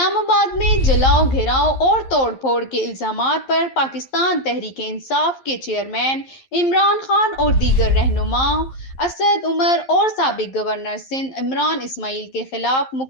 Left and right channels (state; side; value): late; right; 11 ms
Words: آباد میں جلاؤ گھیراؤ اور توڑ پھوڑ کے الزامات پر پاکستان تحریک انصاف کے چیئرمین عمران خان اور دیگر رہنماؤں اسد عمر اور سابق گورنر سندھ عمران اسماعیل کے خلاف